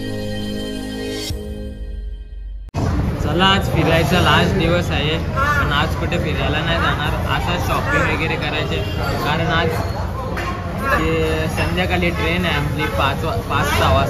आज फिरायचा लास्ट दिवस आहे, पण आज कुठे फिरायला नाही जाणार, असाच शॉपिंग वगैरे करायचे. कारण आज संध्याकाळी ट्रेन आहे आपली 5-6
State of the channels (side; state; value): both; identical; correlation 1.00